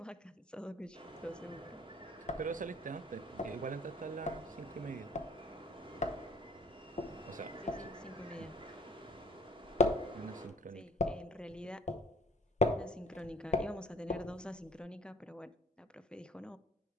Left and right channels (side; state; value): both; normal; correlation 0.56